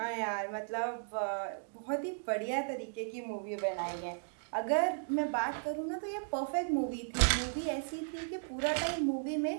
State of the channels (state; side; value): silent; left; digital silence